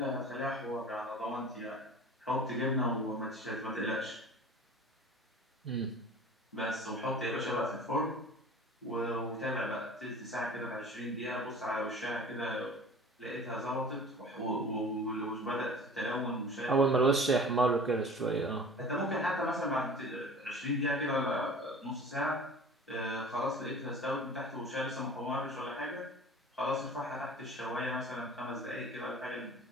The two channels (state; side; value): normal; both; correlation 0.42